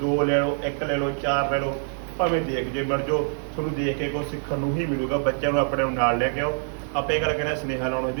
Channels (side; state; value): left; silent; digital silence